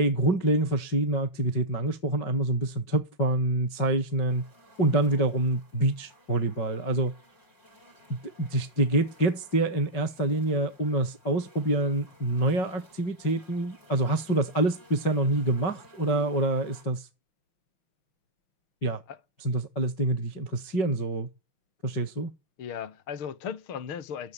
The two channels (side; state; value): right; late; 5.4 ms